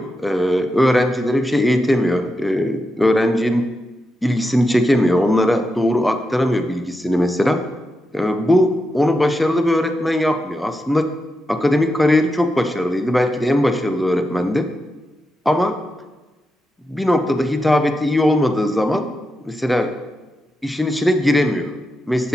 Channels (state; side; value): normal; both; correlation 0.87